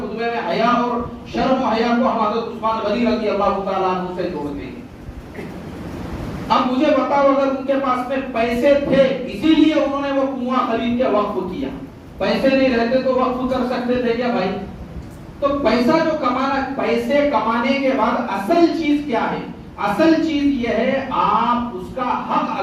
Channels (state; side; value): identical; both; correlation 1.00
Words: खुतबे में हया और शर्म हया को हम हजरत उस्मान गनी रज़ी अल्लाह ताला अन्हु से जोड़ते हैं। अब मुझे बताओ, अगर उनके पास में पैसे थे इसीलिए उन्होंने वो कुआं खरीद के वक्फ किया, पैसे नहीं रहते तो वक्फ कर सकते थे क्या भाई? तो पैसा जो कमाना, पैसे कमाने के बाद असल चीज क्या है? असल चीज ये है, आप उसका हक